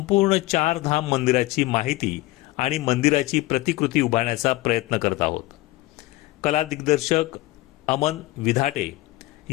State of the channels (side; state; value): right; quieter; 19.2 dB